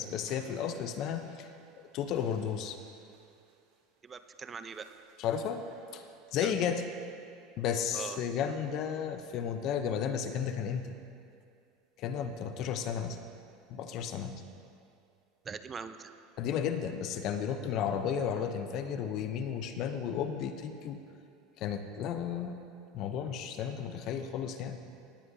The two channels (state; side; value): quieter; right; 7.0 dB